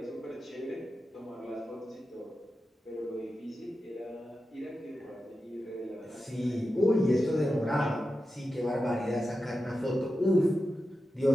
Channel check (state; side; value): normal; both; correlation 0.91